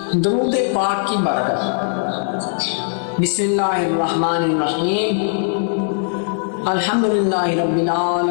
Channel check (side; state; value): right; silent; digital silence